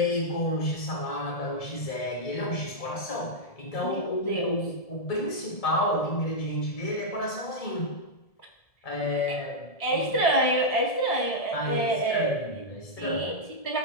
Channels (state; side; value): late; right; 1.7 ms